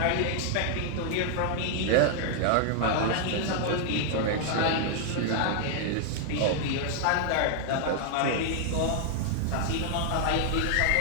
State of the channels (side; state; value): both; different; correlation 0.00